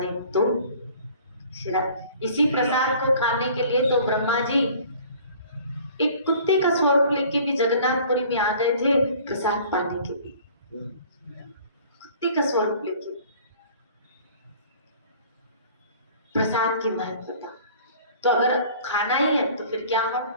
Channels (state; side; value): inverted; both; correlation -0.50